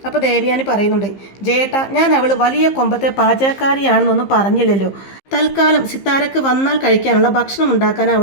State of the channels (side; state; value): right; late; 15 ms